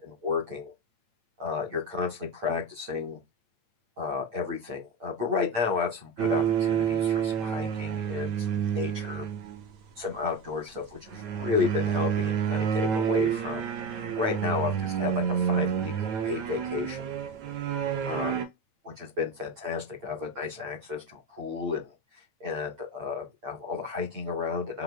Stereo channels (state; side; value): late; left; 8.6 ms